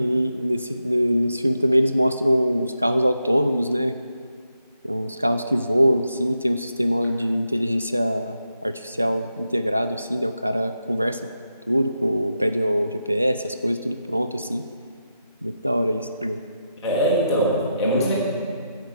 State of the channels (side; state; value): both; inverted; correlation -0.85